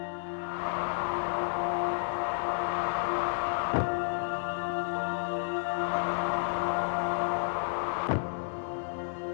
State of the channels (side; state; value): right; silent; digital silence